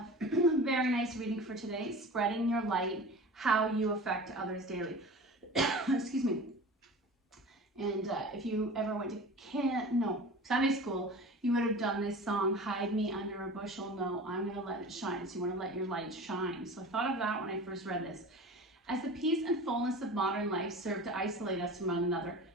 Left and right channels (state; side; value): normal; both; correlation 0.36